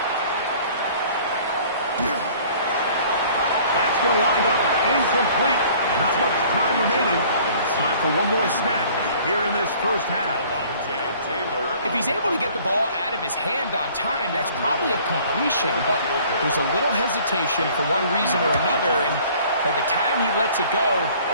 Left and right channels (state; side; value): inverted; both; correlation -0.53